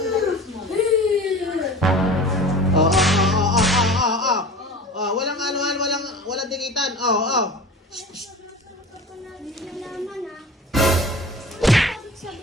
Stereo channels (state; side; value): normal; both; correlation 0.37